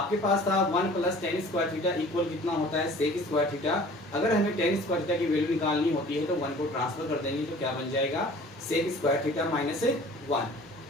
पास था 1 plus tan square theta equal कितना होता है, सेक स्क्वायर थीटा। अगर हमें टेन स्क्वायर थीटा की वैल्यू निकालनी होती है तो 1 को ट्रांसफर कर देंगे तो क्या बन जाएगा, सेक स्क्वायर थीटा माइनस 1।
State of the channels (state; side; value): normal; both; correlation 0.47